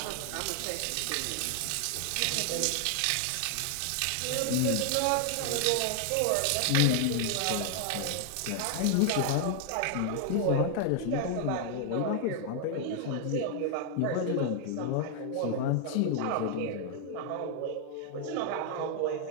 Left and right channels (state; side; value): different; both; correlation 0.00